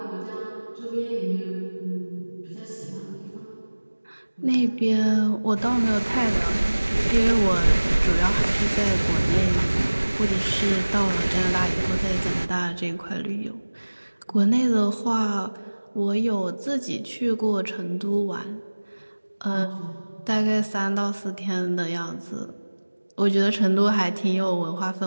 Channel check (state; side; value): inverted; both; correlation -1.00